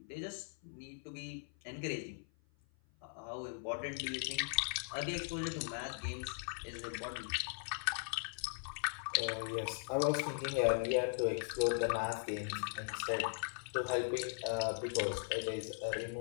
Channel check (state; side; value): silent; right; 52 dB below the other